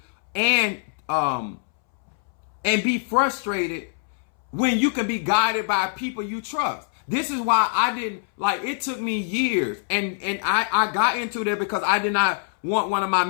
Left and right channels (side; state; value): right; silent; 63 dB below the other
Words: and be frustrated when you can be guided by people you trust? This is why I didn't, it took me years, and I got into that because I did not want one of my